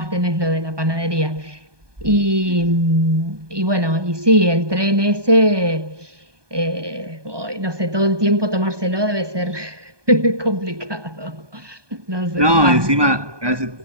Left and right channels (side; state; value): left; late; 1.2 ms